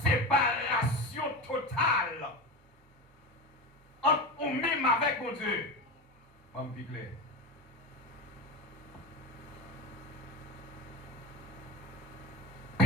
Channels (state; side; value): normal; both; correlation 0.23